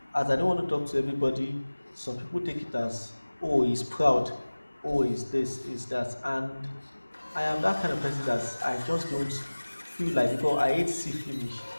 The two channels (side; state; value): both; inverted; correlation -1.00